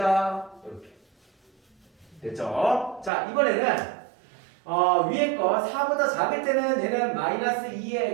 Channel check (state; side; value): drops out; left; at 3.1 s